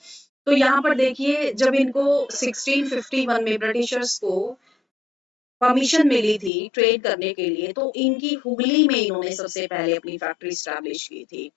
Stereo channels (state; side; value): drops out; right; at 6.5 s